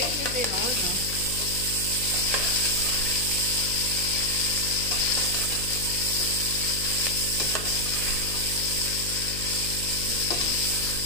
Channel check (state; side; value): noise; left; hum, 8 dB below the sound